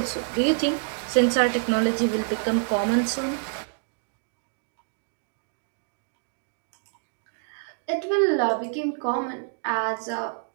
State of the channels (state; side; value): silent; left; digital silence